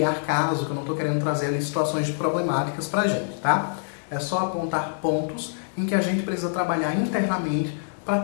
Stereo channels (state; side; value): silent; right; 62 dB below the other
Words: caso, que eu não estou querendo trazer ali situações problemáticas pra gente, tá? É só apontar pontos em que a gente precisa trabalhar internamente para